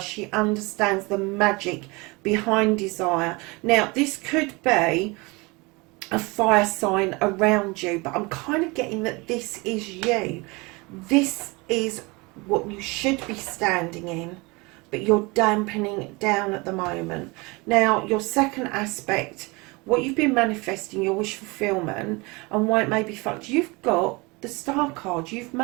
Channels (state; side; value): quieter; left; 25.9 dB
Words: understands the magic behind desire. Now, this could be a fire sign around you, but I'm kind of getting that this is you. This is what you should be standing in, but you're dampening it down at the moment. Now, your second aspect, what you've been manifesting, your wish fulfillment, and why it may be fucked, you've got the Star card. You've